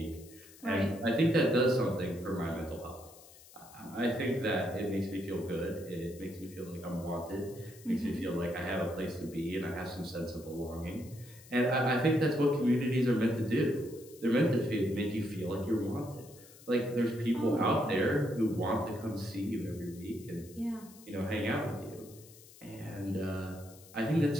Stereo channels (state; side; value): noise; left; hiss, 21 dB below the sound